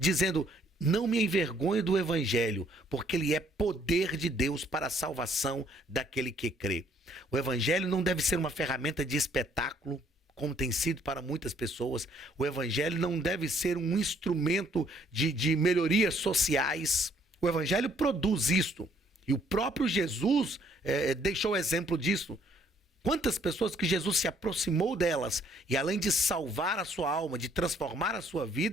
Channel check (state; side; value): normal; both; correlation 0.65